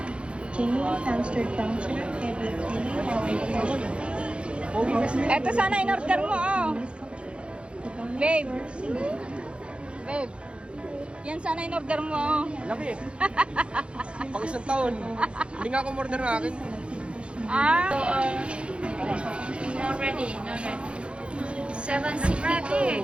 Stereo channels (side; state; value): left; late; 0.058 ms